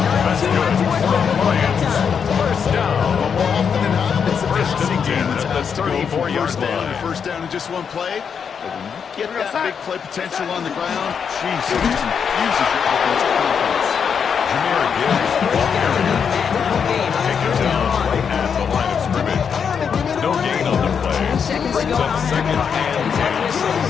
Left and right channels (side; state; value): right; quieter; 6.9 dB